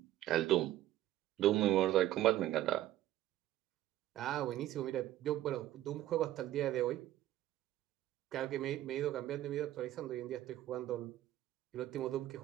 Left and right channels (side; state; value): left; quieter; 13.8 dB